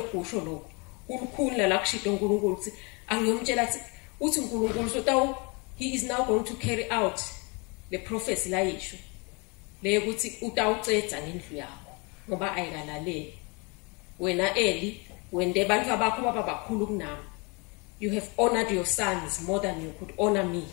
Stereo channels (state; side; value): quieter; right; 30.2 dB